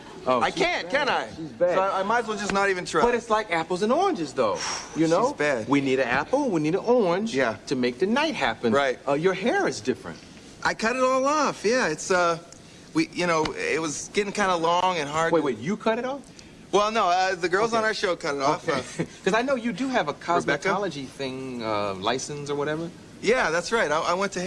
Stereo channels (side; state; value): both; identical; correlation 1.00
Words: Oh, I can't, can I? She's bad. So I might as well just not even try. But it's like apples and oranges, though. You know? She's bad. We need an apple, we need an orange to make the night happen. Right. Your hair is different. I cut it all off. Yeah, it's, it was getting kind of long and hard. Wait, you cut it off? Well, no, the girls on our show cut it off. Because I know you do have a cosmetology thing, license or whatever. Yeah, that's right. I went to